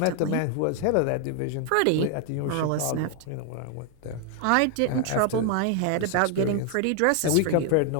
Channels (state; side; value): different; both; correlation 0.00